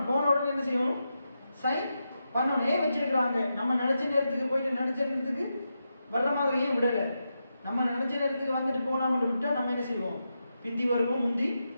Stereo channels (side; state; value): both; inverted; correlation -0.87